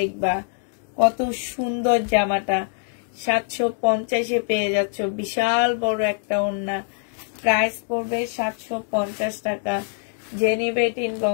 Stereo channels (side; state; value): right; silent; digital silence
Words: কত সুন্দর জামাটা, 750-এ পেয়ে যাচ্ছ। বিশাল বড় একটা ওড়না। প্রাইস পড়বে 750 টাকা। যে নিবে এটা